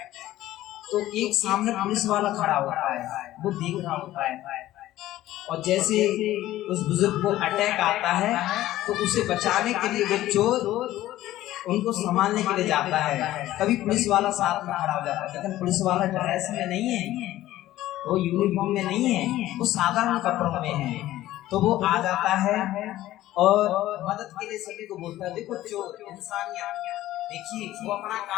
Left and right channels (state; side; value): quieter; right; 14.8 dB